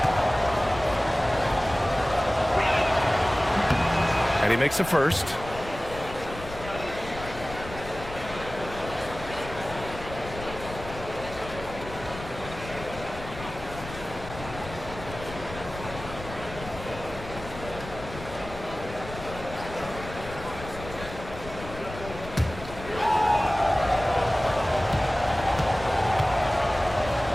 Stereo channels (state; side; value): noise; left; rumble, 12 dB below the sound